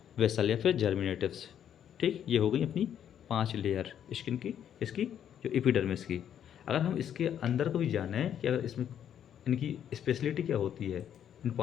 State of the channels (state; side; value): quieter; right; 9.5 dB